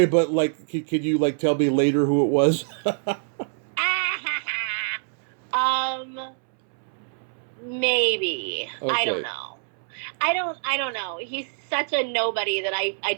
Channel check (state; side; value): silent; left; 62 dB below the other